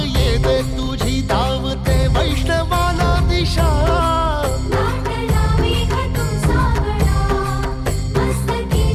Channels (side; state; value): both; identical; correlation 1.00